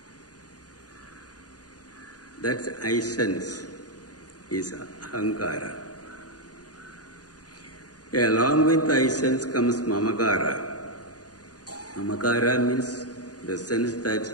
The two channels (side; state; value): right; late; 0.68 ms